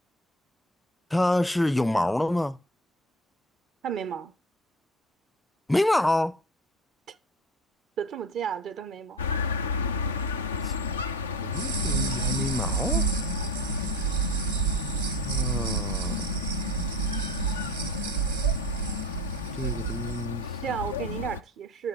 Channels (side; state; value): both; normal; correlation 0.34